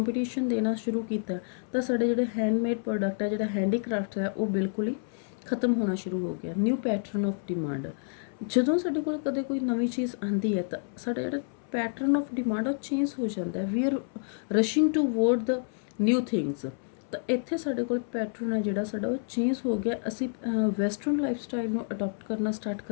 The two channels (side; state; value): right; silent; 59 dB below the other